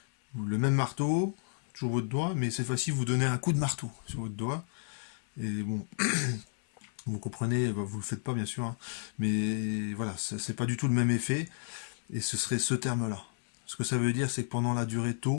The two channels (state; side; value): silent; right; 56 dB below the other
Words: le même marteau, toujours votre doigt, mais cette fois-ci, vous donnez un coup de marteau sur votre doigt. Et bon, vous comprenez, bah, vous le faites pas, bien sûr, hein, mais voilà, c'est pas du tout le même effet, et ce serait ce terme-là. Ce que ça veut dire, c'est que pendant la durée